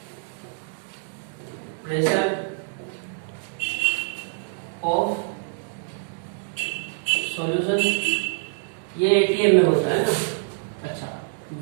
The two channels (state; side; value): silent; left; digital silence